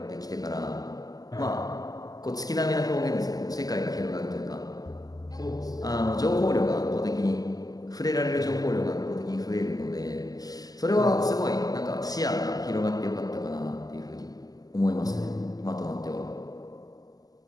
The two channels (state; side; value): late; right; 0.18 ms